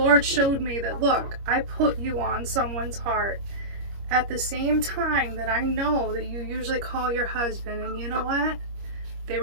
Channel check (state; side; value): late; left; 25 ms